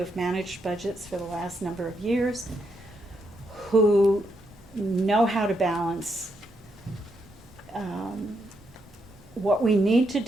managed budgets for the last number of years who know how to balance what we need to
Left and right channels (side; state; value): both; normal; correlation 0.79